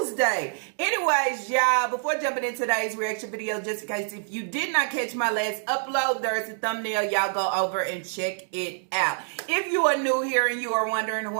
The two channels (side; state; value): left; silent; digital silence